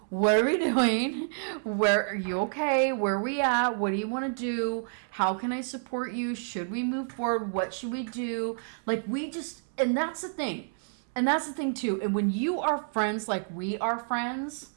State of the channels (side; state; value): left; silent; 59 dB below the other